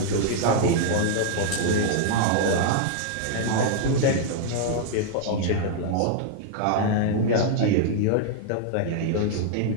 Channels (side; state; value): both; different; correlation -0.01